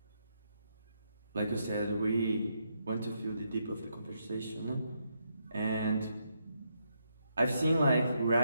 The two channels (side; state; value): both; inverted; correlation -0.79